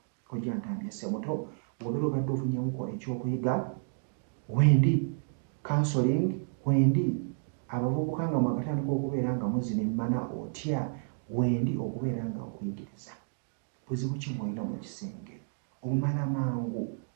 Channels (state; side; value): silent; left; digital silence